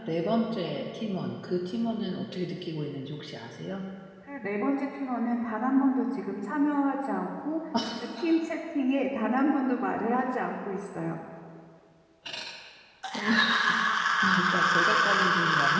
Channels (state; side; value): identical; both; correlation 1.00